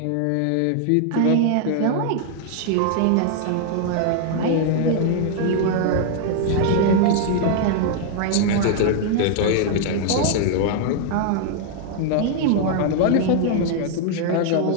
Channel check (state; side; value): different; both; correlation 0.00